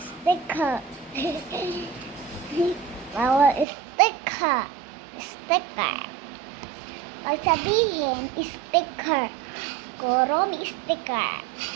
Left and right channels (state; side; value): drops out; left; at 3.7 s